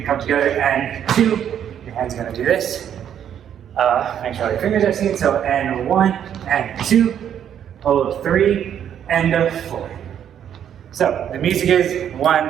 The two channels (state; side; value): quieter; left; 9.4 dB